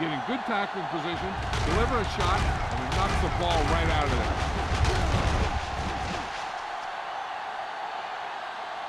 get in good tackling position, deliver a shot, and he knocks the ball right out of there.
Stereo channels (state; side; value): identical; both; correlation 1.00